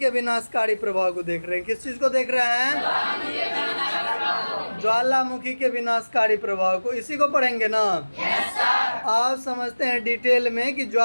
विनाशकारी प्रभाव को देख रहे हैं। किस चीज को देख रहे हैं? ज्वालामुखी के विनाशकारी प्रभाव को। इसी को पढ़ेंगे ना? आप समझते हैं डिटेल में कि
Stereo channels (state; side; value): inverted; both; correlation -1.00